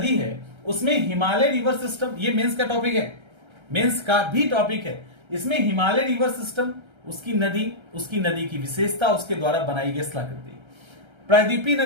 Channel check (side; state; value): left; late; 1.3 ms